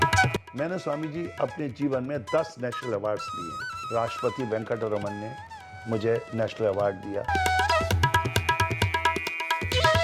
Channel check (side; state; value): both; identical; correlation 1.00